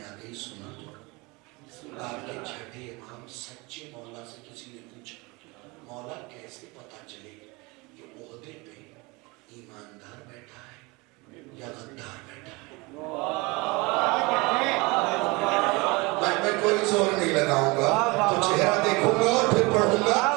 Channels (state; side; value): quieter; left; 25.4 dB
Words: आ गई, सुना तो आपके छठे इमाम सच्चे मौला से किसी ने पूछा, मौला कैसे पता चले कि ओहदे पे ईमानदार बैठा है या गद्दार बैठा है? मैं कोई जोर नहीं लगाऊंगा, तो चेहरा देखूंगा और फिर पढ़ूंगा